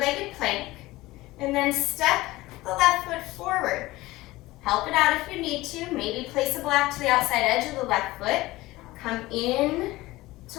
plank, and then step the left foot forward. Help it out if you need to. Maybe place a block to the outside edge of the left foot. Come in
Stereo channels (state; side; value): quieter; right; 18.9 dB